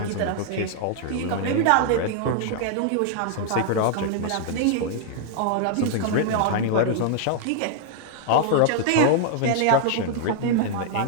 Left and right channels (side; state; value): both; different; correlation -0.01